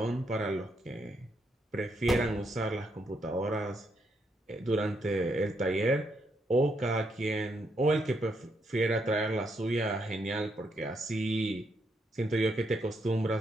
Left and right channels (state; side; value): normal; both; correlation 0.77